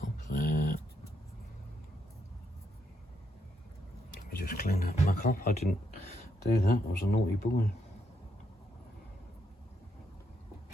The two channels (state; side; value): normal; both; correlation 0.78